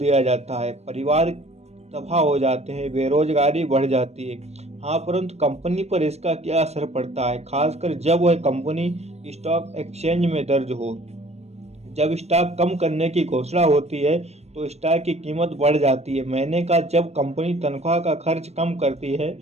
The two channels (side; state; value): left; late; 0.31 ms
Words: जाता है, परिवार तबाह हो जाते हैं, बेरोजगारी बढ़ जाती है। हाँ, परंतु कंपनी पर इसका क्या असर पड़ता है, खासकर जब वह कंपनी स्टॉक एक्सचेंज में दर्ज हो। जब स्टॉक कम करने की घोषणा होती है तो स्टॉक की कीमत बढ़ जाती है। मैंने कहा जब कंपनी तनख्वाह का खर्च कम करती है